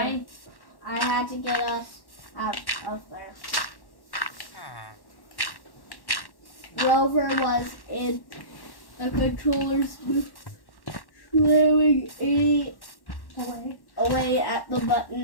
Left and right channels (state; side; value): late; right; 1.1 ms